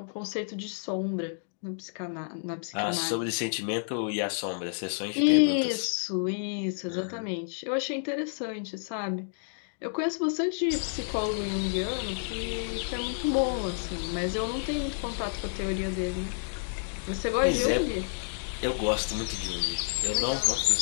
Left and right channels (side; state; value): right; silent; digital silence